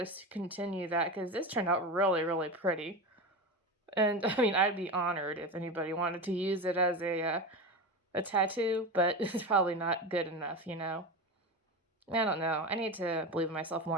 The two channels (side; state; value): both; normal; correlation 0.23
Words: continue that because this turned out really, really pretty. And I mean, I'd be honored if anybody wanted to use it as a tattoo, but it's probably not good enough, I don't know. I need to believe in myself